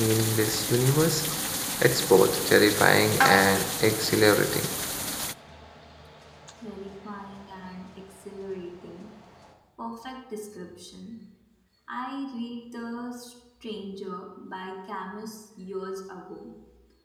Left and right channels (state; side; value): identical; both; correlation 1.00